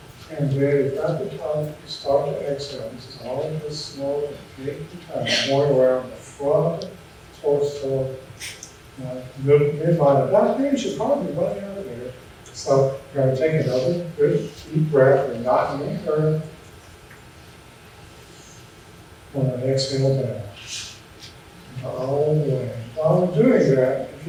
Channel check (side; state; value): both; identical; correlation 1.00